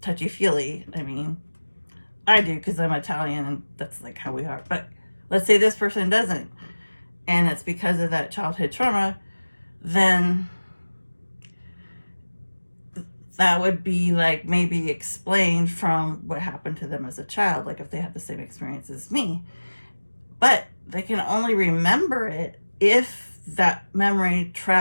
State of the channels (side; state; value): both; inverted; correlation -1.00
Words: touchy-feely. I mean, I do because I'm Italian and that's like how we are. But let's say this person doesn't, and it's because of that childhood trauma, then that would be like maybe explained from what happened to them as a child, like if they had the same experience as me. But they can only remember it if that memory